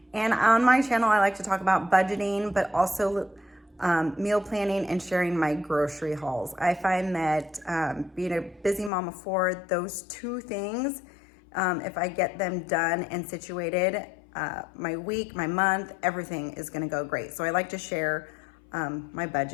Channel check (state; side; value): drops out; right; at 8.9 s